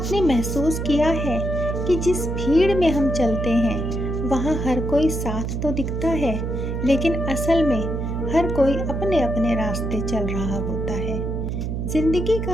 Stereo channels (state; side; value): noise; right; hum, 2 dB below the sound